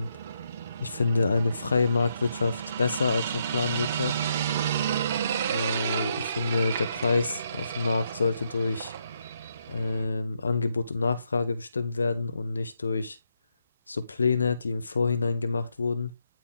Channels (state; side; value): inverted; both; correlation -0.78